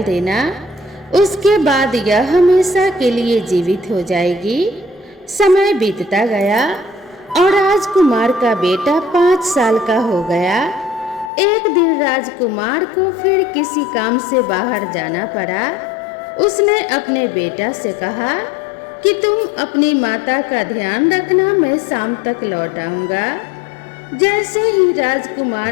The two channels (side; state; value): right; drops out; at 11.3 s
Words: देना। उसके बाद यह हमेशा के लिए जीवित हो जाएगी। समय बीतता गया और राजकुमार का बेटा 5 साल का हो गया। एक दिन राजकुमार को फिर किसी काम से बाहर जाना पड़ा। उसने अपने बेटा से कहा कि तुम अपनी माता का ध्यान रखना, मैं शाम तक लौट आऊंगा। जैसे ही